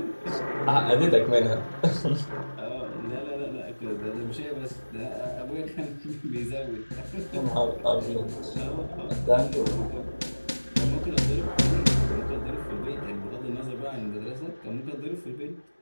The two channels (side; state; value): both; inverted; correlation -1.00